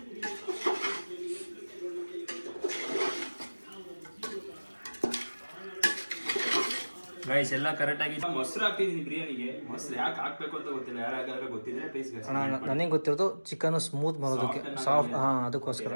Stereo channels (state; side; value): inverted; both; correlation -1.00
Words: ಗೈಸ್ ಎಲ್ಲ ಕರೆಕ್ಟ್ ಆಗಿ ಮೊಸರು ಹಾಕ್ತಿದೀನಿ ಬಿರಿಯಾನಿಗೆ. ಮೊಸರು ಯಾಕೆ ಹಾಕ್ಬೇಕು ಅಂತ ಗೊತ್ತಿಲ್ಲ, ಯಾರಾಗಾದ್ರೆ ಗೊತ್ತಿದ್ರೆ ಪ್ಲೀಸ್. ನನಗೆ ಗೊತ್ತಿರೋದು ಚಿಕನ್ ಸ್ಮೂತ್ ಬರೋದಕ್ಕೆ, ಸಾಫ್ಟ್. ಅದಕ್ಕೋಸ್ಕರ